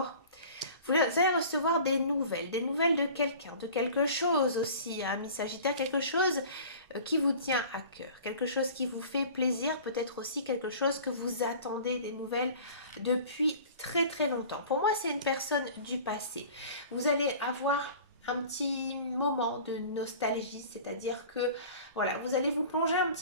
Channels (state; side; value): inverted; both; correlation -0.43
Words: Vous allez recevoir des nouvelles de quelqu'un, de quelque chose aussi, hein, ami Sagittaire, quelque chose qui vous tient à cœur, quelque chose qui vous fait plaisir, peut-être aussi quelque chose que vous attendez des nouvelles depuis très très longtemps. Pour moi, c'est une personne du passé. Vous allez avoir un petit moment de nostalgie, c'est-à-dire que voilà, vous allez vous plonger un